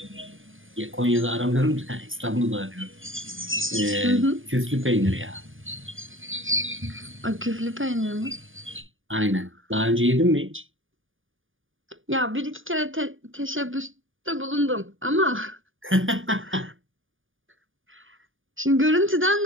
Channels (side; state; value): left; late; 0.58 ms